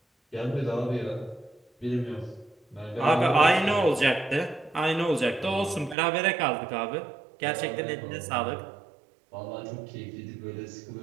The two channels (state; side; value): drops out; left; at 6.0 s